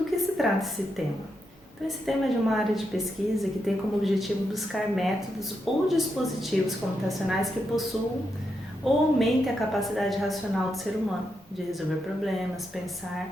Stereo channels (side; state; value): both; normal; correlation 0.84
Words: que se trata esse tema? Então, esse tema é de uma área de pesquisa que tem como objetivo buscar métodos ou dispositivos computacionais que possuam ou aumentem a capacidade racional do ser humano de resolver problemas,